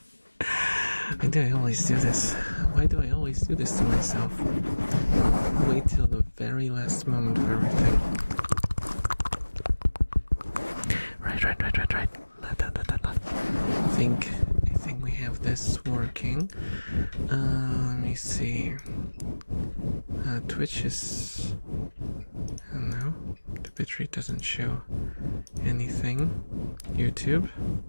Why do I always do this? Why do I always do this to myself? Wait till the very last moment for everything. Right. I think we have this working. Let me see. Twitch is... I don't know. The bitrate doesn't show anything. YouTube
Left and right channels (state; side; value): inverted; both; correlation -1.00